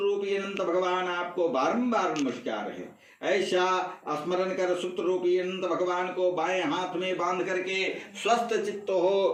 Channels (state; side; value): identical; both; correlation 1.00